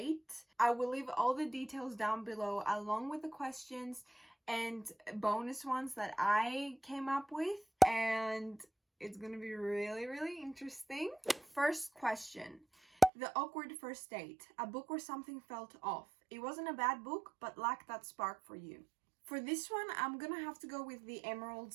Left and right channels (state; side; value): drops out; left; at 13.1 s